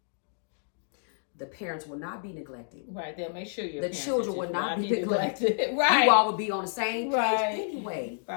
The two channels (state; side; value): silent; right; digital silence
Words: the parents will not be neglected. Right. They'll make sure the children will not be neglected. Right. You all will be on the same page anyway.